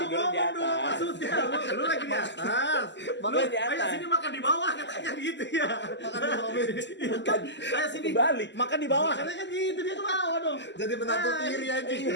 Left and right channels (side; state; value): right; late; 0.52 ms